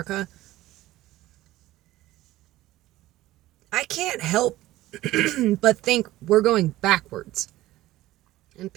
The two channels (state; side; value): quieter; left; 16.2 dB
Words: I can't help but think we're going backwards. And